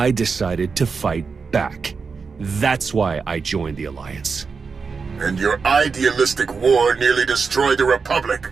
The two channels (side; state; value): left; quieter; 5.1 dB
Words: decided to fight back. That's why I joined the Alliance. And your idealistic war nearly destroyed the